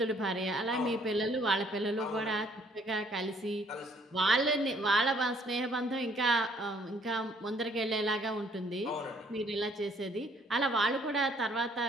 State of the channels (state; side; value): normal; both; correlation 0.63